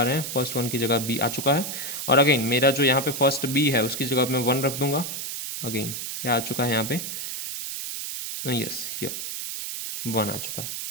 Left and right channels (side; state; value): right; noise; hiss, 5 dB below the sound